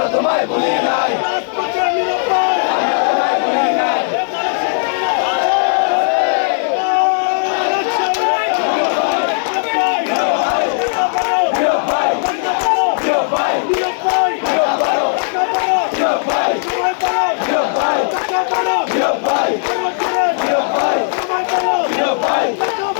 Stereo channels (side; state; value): right; silent; digital silence